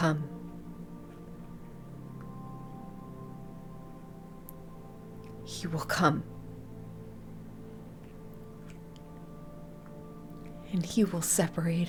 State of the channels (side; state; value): both; identical; correlation 1.00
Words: He will come. And he will